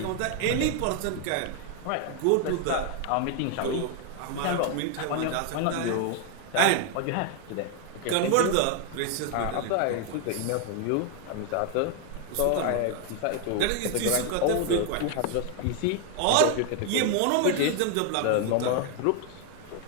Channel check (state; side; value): different; both; correlation 0.01